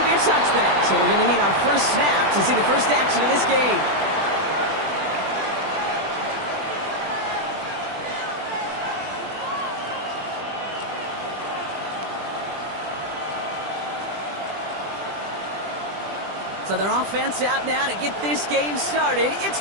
be a touchback, so we're going to need our first snap to see the first action of this game. So their offense out now to get this game started. It's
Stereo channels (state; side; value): late; left; 20 ms